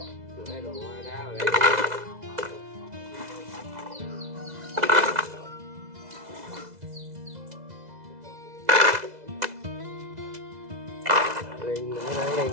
Đá vào đây. Lên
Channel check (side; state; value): left; late; 2.0 ms